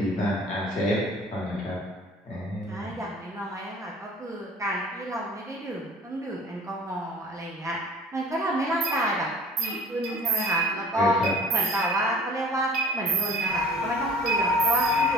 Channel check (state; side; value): normal; both; correlation 0.46